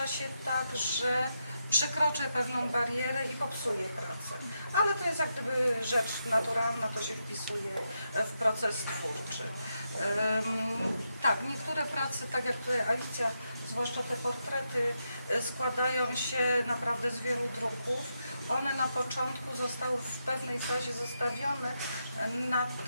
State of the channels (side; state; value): both; inverted; correlation -0.84